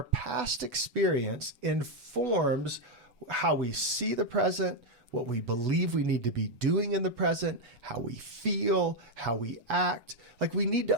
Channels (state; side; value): late; left; 7.2 ms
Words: past experience informs how we see the present, what we believe we need to be doing in the present, how we feel, how we act. Like we need